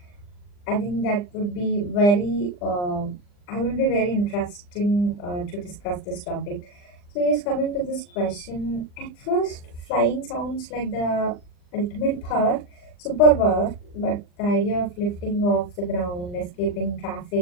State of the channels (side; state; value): right; late; 39 ms